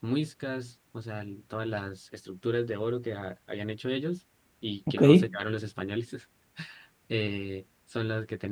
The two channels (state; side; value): identical; both; correlation 1.00